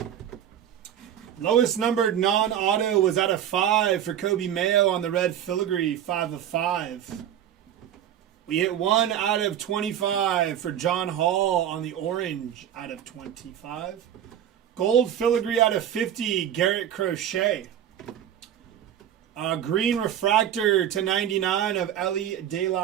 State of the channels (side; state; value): left; quieter; 10.3 dB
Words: Lowest numbered non-auto was out of 5 for Kobe Mayo on the red filigree, 5 of 5. We hit 1 out of 25 for John Hall on the orange out of 25. Gold filigree out of 50, Garrett Crochet. Green refractor to 99 of Ellie De